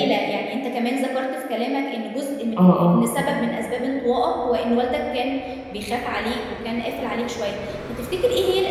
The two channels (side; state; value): both; identical; correlation 1.00